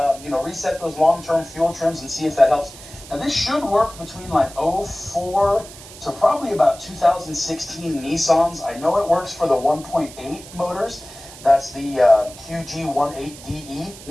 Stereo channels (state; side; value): noise; right; hiss, 17 dB below the sound